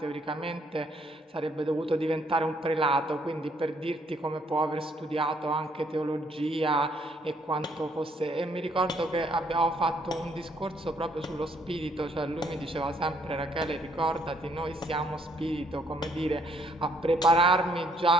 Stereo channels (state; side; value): normal; both; correlation 0.68